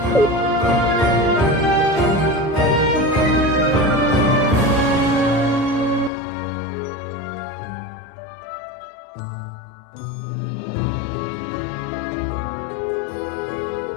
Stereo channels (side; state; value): right; drops out; at 6.1 s